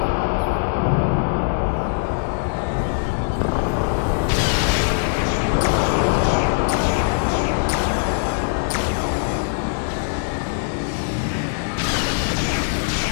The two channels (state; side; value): silent; right; digital silence